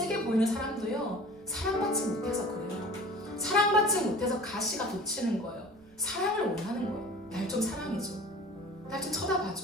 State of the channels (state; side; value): noise; right; rumble, 30 dB below the sound